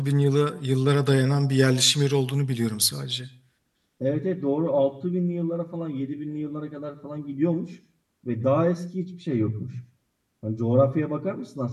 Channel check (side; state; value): both; identical; correlation 1.00